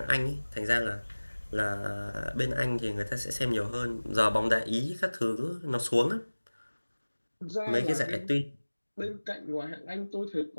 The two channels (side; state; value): both; inverted; correlation -1.00